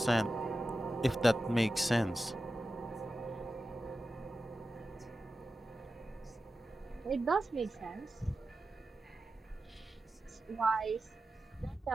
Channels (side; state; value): both; normal; correlation 0.93